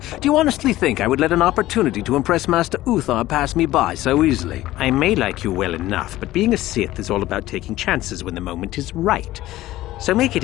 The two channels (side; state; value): right; quieter; 15.9 dB